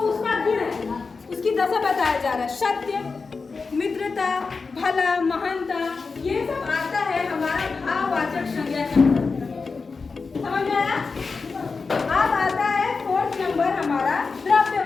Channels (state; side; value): quieter; right; 4.5 dB